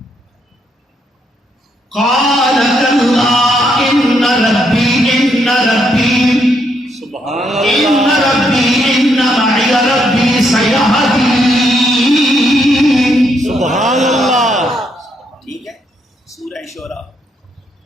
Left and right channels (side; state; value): both; normal; correlation 0.75